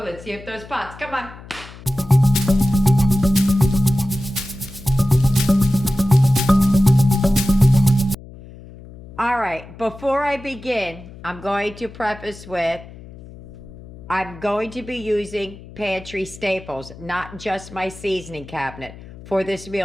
Let's see if those pots, come on. All right, before I begin, I'm going to preface with, I'm going to be using pantry staples, not just my seasoning cabinet. For this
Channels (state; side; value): noise; left; hum, 18 dB below the sound